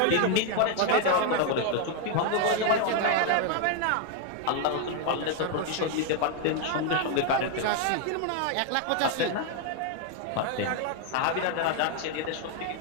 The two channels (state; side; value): different; both; correlation 0.01